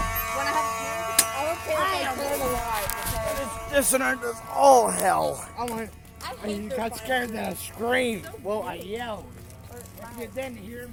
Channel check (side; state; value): both; identical; correlation 1.00